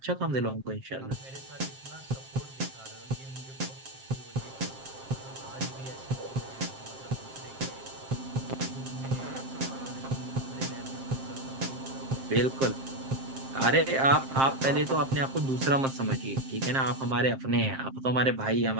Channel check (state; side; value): late; left; 7.5 ms